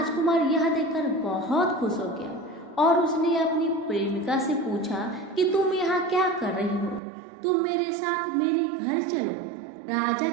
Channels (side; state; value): left; drops out; at 7.0 s